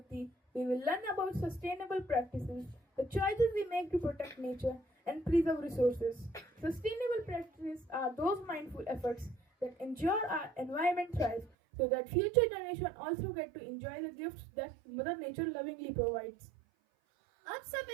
we will learn about sustainable practices, the choices we make to protect nature and preserve resources. Sustainable practices are those mindful efforts that ensure our environment thrives so that future generations also get to enjoy the gifts that Mother Nature lovingly provides. अब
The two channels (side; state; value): left; drops out; at 11.5 s